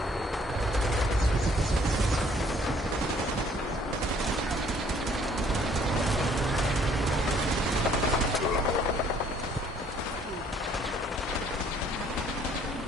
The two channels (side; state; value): both; normal; correlation 0.61